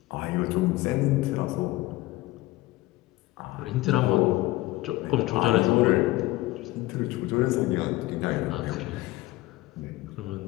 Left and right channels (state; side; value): quieter; right; 18.5 dB